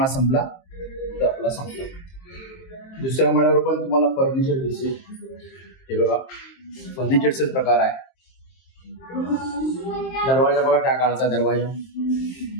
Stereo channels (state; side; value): late; right; 23 ms